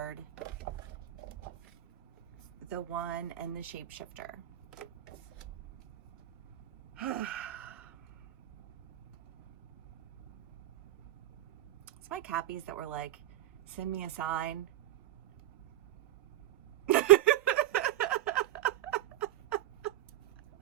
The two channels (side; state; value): left; quieter; 14.1 dB